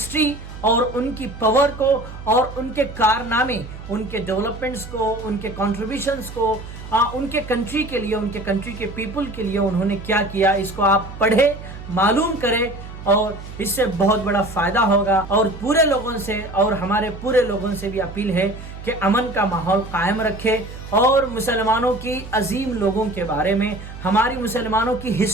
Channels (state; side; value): noise; right; hum, 12 dB below the sound